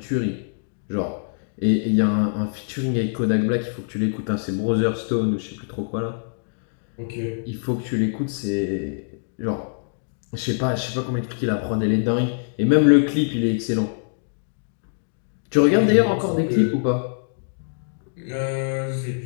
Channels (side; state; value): right; silent; digital silence